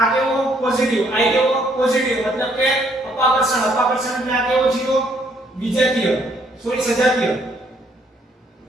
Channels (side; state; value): both; normal; correlation 0.67